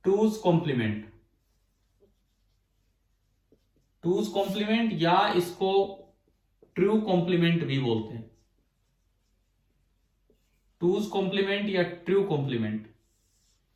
टूज कॉम्प्लीमेंट। टूज कॉम्प्लीमेंट या इसको ट्रू कॉम्प्लीमेंट भी बोलते हैं। टूज कॉम्प्लीमेंट या ट्रू कॉम्प्लीमेंट,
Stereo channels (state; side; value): identical; both; correlation 1.00